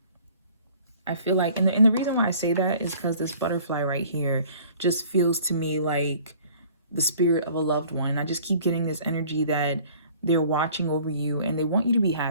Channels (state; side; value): inverted; both; correlation -0.52